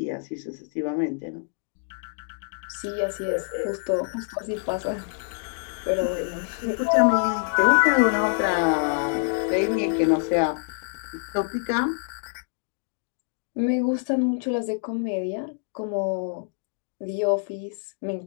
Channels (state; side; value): silent; right; digital silence